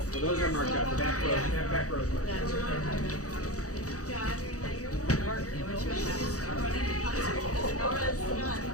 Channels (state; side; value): late; right; 0.66 ms